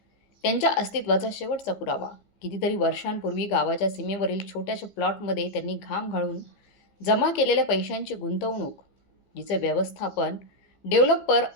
त्यांच्या अस्तित्वाचा शेवटचा पुरावा. कितीतरी वर्षांपूर्वी गावाच्या सीमेवरील छोट्याशा प्लॉटमध्ये त्यांनी घाम गाळून जमा केलेल्या पैशांची गुंतवणूक, जिचं व्यवस्थापन डेव्हलपर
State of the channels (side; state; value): right; late; 15 ms